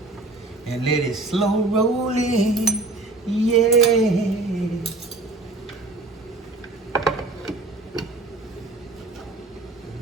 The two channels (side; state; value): left; quieter; 3.1 dB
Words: and let it slow roll in. Yeah.